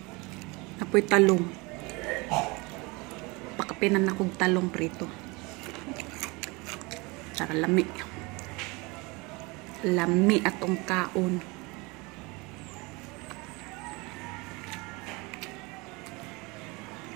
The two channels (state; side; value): quieter; left; 26.0 dB